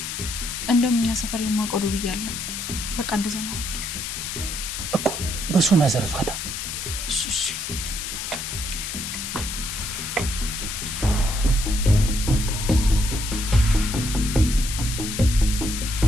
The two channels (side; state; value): left; noise; hiss, 5 dB below the sound